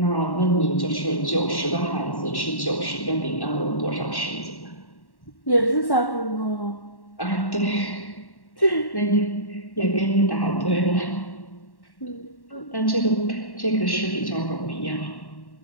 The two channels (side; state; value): right; late; 1.1 ms